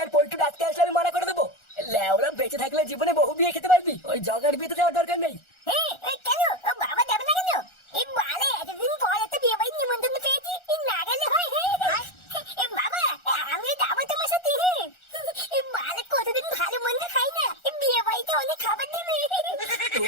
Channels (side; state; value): right; late; 1.4 ms